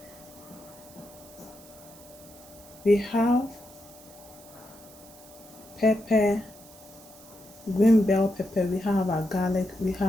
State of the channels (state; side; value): noise; right; hiss, 21 dB below the sound